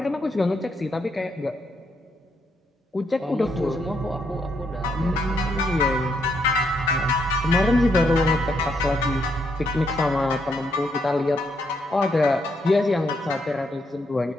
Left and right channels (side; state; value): both; normal; correlation 0.76